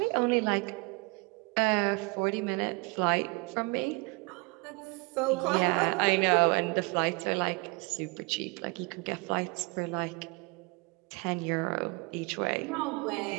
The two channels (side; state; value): left; quieter; 28.3 dB